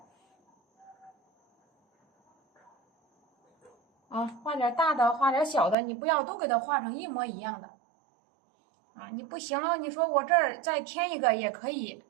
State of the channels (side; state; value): left; drops out; at 5.8 s